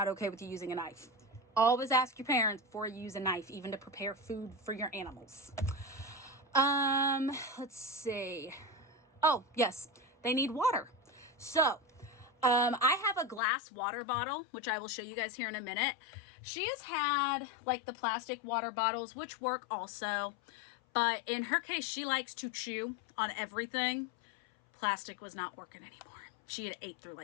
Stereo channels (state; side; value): drops out; right; at 13.4 s